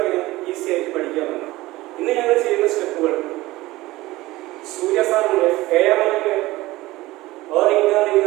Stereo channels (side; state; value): left; quieter; 18.7 dB